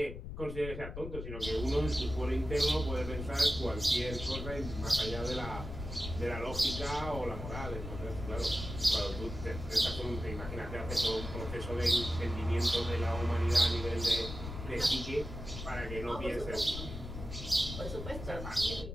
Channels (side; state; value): left; noise; rumble, 8 dB below the sound